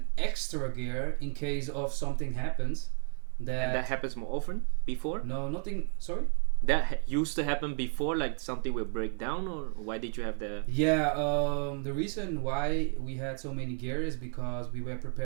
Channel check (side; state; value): left; quieter; 38.5 dB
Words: extra gear in case of something happens. And that happens more often before. No, nothing. Sorry. That used to happen before, like something will break down, or why did you have the? Yeah. The reason why we had so many gear is because we were